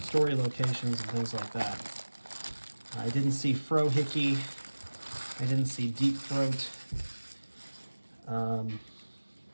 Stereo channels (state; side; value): inverted; both; correlation -1.00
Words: story locations and things like that. I didn't see Frohickey. I didn't see Deep Throat. There